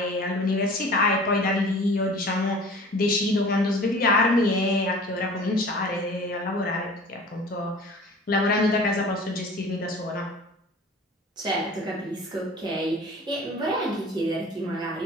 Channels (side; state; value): both; normal; correlation 0.43